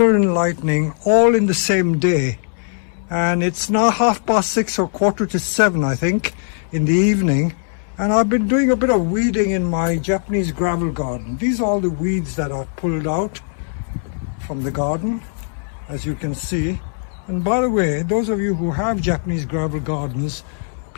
and lightning all in the same day. And it's now 6:30 or 6:45, I think, in the evening. And I've been doing a bit of weeding in my Japanese gravel garden. These are all the weeds that I've pulled out from the garden, as you can see. And by the way, those of you who have Japanese gravel gardens,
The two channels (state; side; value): silent; right; 63 dB below the other